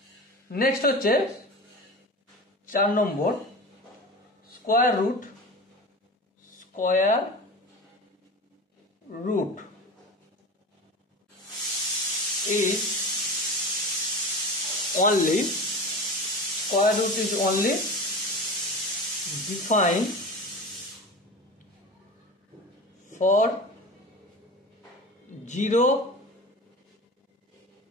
নেক্সট হচ্ছে 4 নম্বর, square root. Square root is only, square root is only defined for 0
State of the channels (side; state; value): both; normal; correlation 0.31